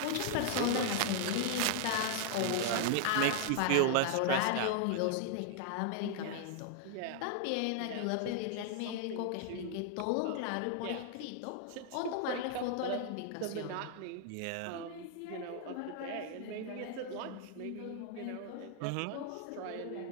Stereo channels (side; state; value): both; different; correlation 0.00